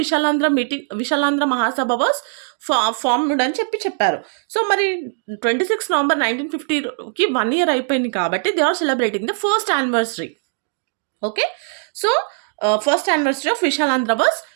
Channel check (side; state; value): left; silent; digital silence